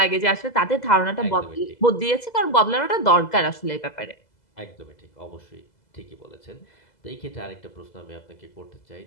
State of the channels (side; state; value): right; late; 2.0 ms